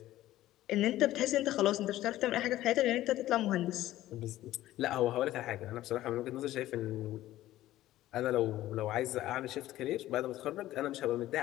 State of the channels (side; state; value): right; quieter; 14.8 dB